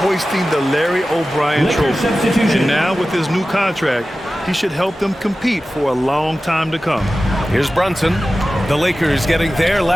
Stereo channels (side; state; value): both; normal; correlation 0.95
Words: hoisting the Larry O'Brien trophy. And now with his new contract, he should help them compete for a long time to come. Here's Brunson. The Lakers getting their